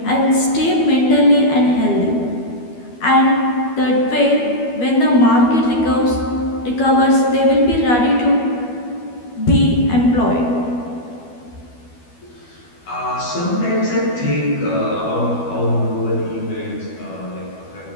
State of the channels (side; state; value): right; late; 12 ms